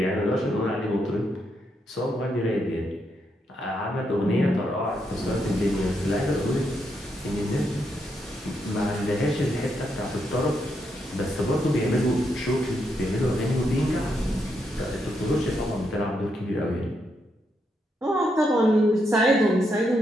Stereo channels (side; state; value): both; normal; correlation 0.80